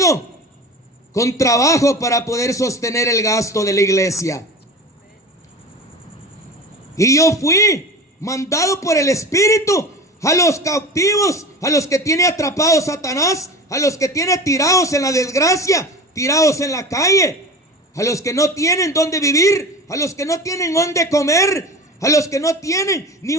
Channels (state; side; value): normal; both; correlation 0.32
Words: con trabajo para poder sostener el gasto de la iglesia. Y yo fui mandado por el Espíritu a los cautivos, a los que tiene atrapados Satanás, a los que tiene tirados en la desgracia, tirados en la calle, a los que no tienen dónde vivir, a los que no tienen dónde comer, a los que no tienen ni